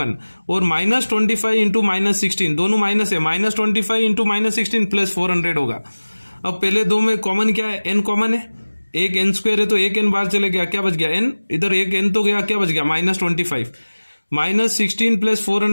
और -25 इंटू -16 दोनों माइनस है, -25 इंटू -16 प्लस 400 होगा। अब पहले दो में कॉमन क्या है n कॉमन है, एक n स्क्वायर है तो एक n बाहर चले गया, क्या बच गया n, इधर एक n तो गया, क्या बच गया -25, -16 प्लस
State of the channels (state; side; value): inverted; both; correlation -1.00